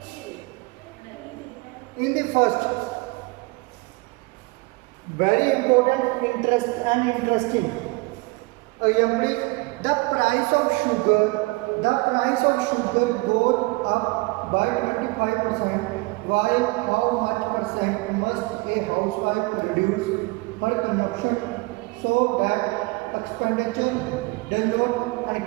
In the first, very important, interesting example is the price of sugar. The price of sugar goes up by 25%. While how much percent must a housewife reduce her consumption so that expenditure does not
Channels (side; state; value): left; quieter; 25.4 dB